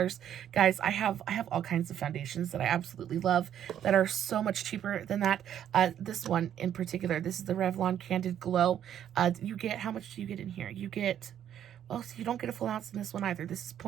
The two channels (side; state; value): left; quieter; 10.1 dB